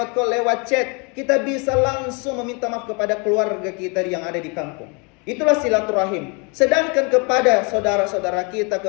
call, lewat chat. Kita bisa langsung meminta maaf kepada keluarga kita yang ada di kampung. Itulah silaturahim. Sedangkan kepada saudara-saudara kita,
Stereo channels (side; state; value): right; quieter; 33.3 dB